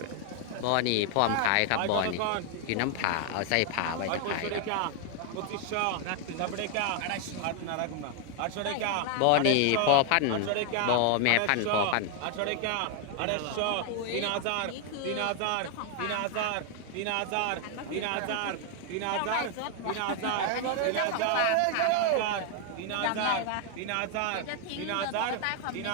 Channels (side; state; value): both; different; correlation 0.00